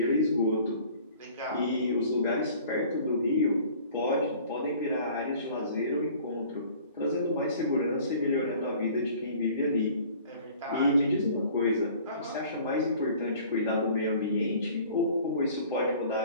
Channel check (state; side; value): inverted; both; correlation -0.49